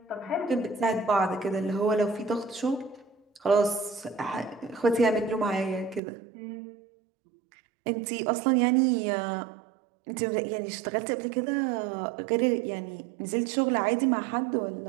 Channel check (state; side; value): drops out; left; at 6.0 s